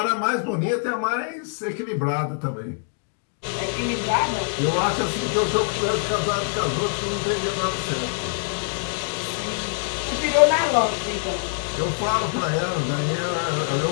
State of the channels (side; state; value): right; silent; 61 dB below the other